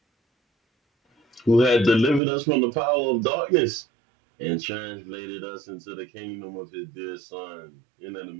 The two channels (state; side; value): drops out; left; at 2.2 s